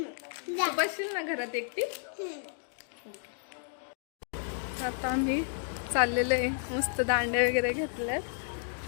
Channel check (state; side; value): silent; right; digital silence